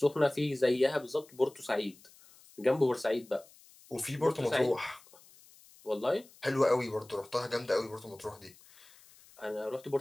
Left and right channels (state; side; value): noise; left; hiss, 25 dB below the sound